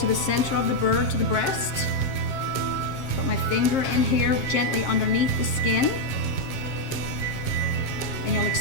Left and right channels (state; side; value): late; right; 7.5 ms